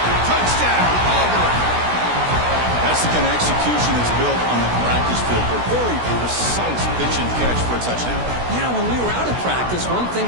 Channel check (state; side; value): late; left; 16 ms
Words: Touchdown, Auburn. That's the kind of execution that's built on the practice field. A very precise pitch and catch for a touchdown. You know, when we were out of practice, one thing